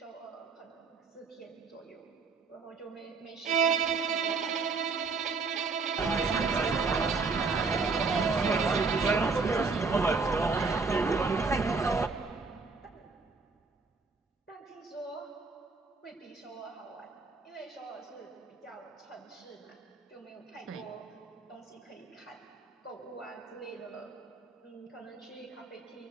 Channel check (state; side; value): quieter; left; 4.4 dB